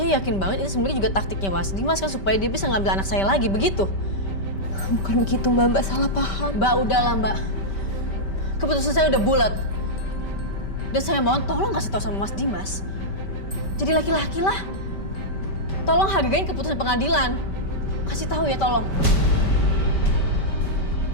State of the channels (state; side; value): late; right; 5.2 ms